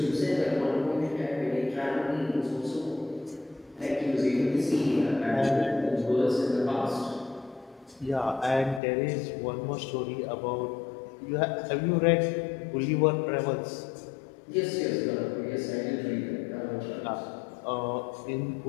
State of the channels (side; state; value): right; drops out; at 8.8 s